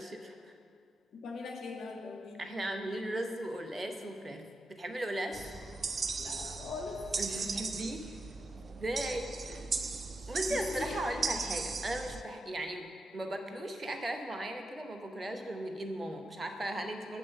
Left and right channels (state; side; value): normal; both; correlation 0.87